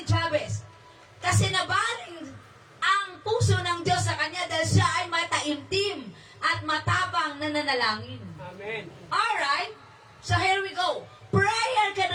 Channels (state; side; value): identical; both; correlation 1.00